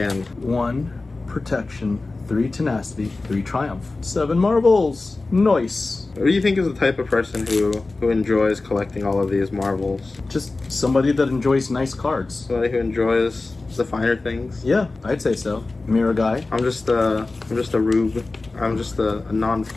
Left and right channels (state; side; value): quieter; right; 3.4 dB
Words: 1 Protection, 3 Tenacity, 3 Triumph, 7 Marbles. Nice. What do you think is the type of person who enjoys collecting all of these marbles? Just somebody that enjoys nice cards. Somebody who enjoys the finer things? Yeah, I'd say so. Mirror guy. I'm just a rube. I'm just a